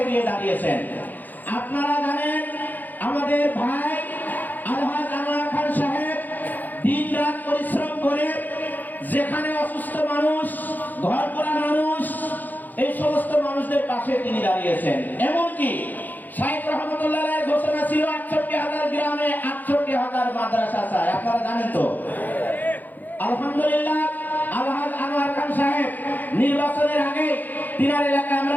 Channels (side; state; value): right; late; 0.084 ms